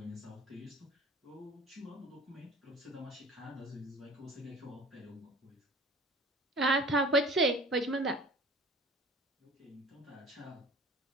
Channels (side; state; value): both; normal; correlation 0.45